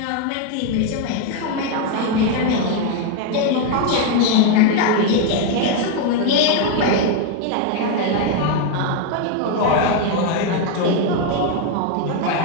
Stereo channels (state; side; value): different; both; correlation 0.01